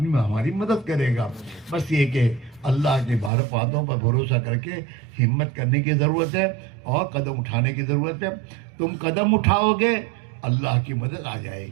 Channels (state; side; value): drops out; left; at 3.3 s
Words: ہماری مدد کرے گا. بس یہ کہ اللہ کے باتوں پر بھروسہ کر کے ہمت کرنے کی ضرورت ہے اور قدم اٹھانے کی ضرورت ہے. تم قدم اٹھاؤ گے اللہ کی مدد آ جائے